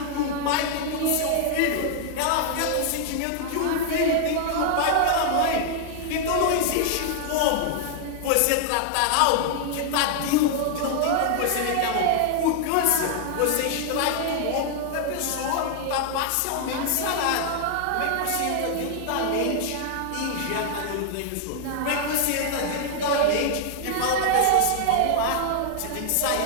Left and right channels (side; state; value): both; different; correlation 0.00